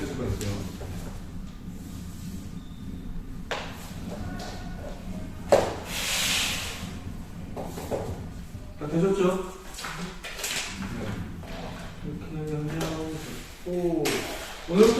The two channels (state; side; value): identical; both; correlation 1.00